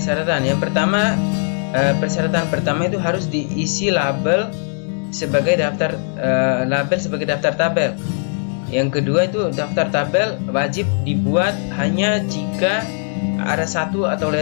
Yang pertama, persyaratan pertama itu harus diisi label sebagai daftar tabel. Yang kedua itu daftar tabel wajib dibuat hanya jika ada satu atau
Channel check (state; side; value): silent; right; 66 dB below the other